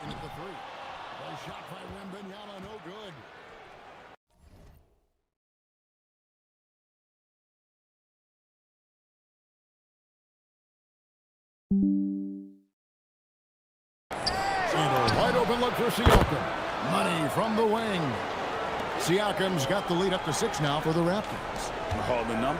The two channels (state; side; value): identical; both; correlation 1.00